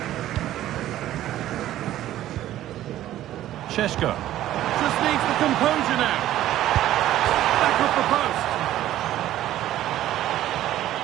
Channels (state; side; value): quieter; left; 13.4 dB